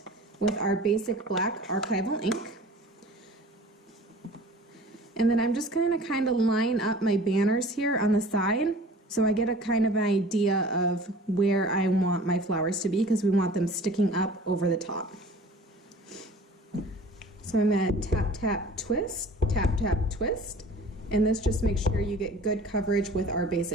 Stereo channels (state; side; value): normal; both; correlation 0.45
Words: with our basic black archival ink. And then I'm just going to kind of line up my banners here on the side so I get a kind of an idea of where I want my flowers to be, because we want them sticking up over the top. So I'm going to tap, tap, twist, tap, tap, twist, and this just makes sure you get good coverage with our